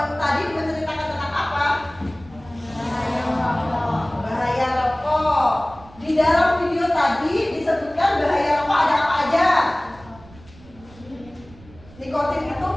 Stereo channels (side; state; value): right; noise; rumble, 23 dB below the sound